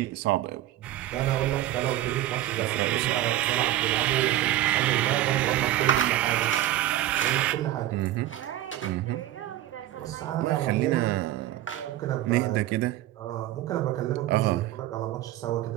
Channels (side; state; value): left; quieter; 14.1 dB